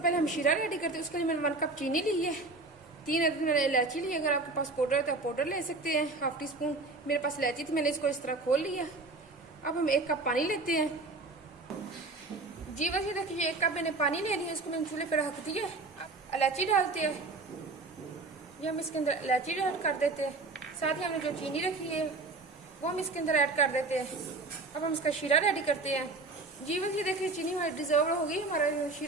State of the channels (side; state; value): left; quieter; 3.4 dB